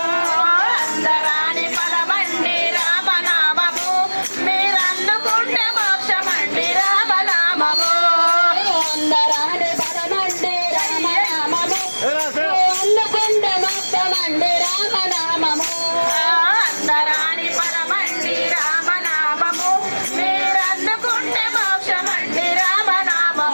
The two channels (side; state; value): both; inverted; correlation -1.00